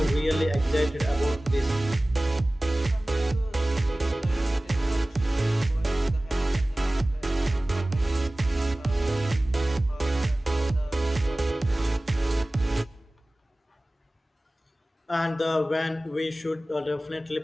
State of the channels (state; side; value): normal; both; correlation 0.98